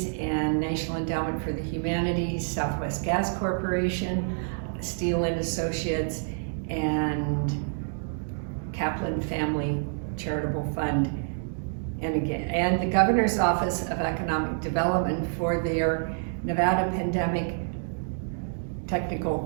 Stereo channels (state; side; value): silent; left; digital silence